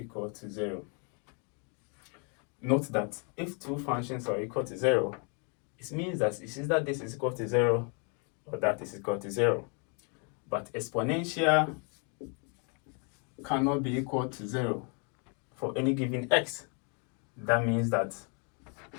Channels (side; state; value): right; quieter; 37.9 dB